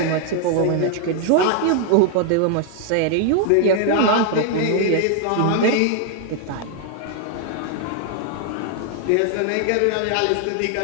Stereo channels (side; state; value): both; different; correlation 0.00